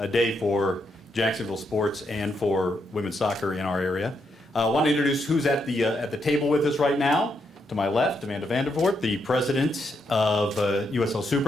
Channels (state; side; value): normal; both; correlation 0.79